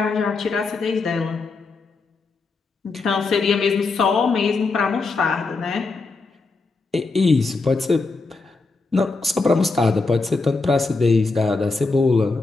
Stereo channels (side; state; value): right; quieter; 3.9 dB